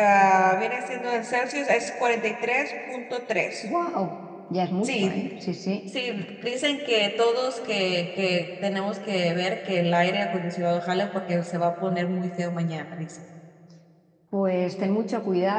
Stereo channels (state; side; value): identical; both; correlation 1.00